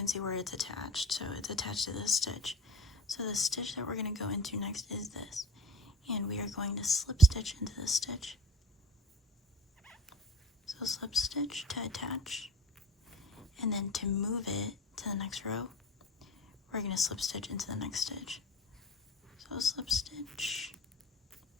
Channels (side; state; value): both; normal; correlation 0.39